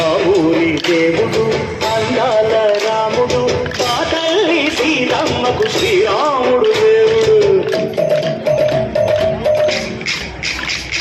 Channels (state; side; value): identical; both; correlation 1.00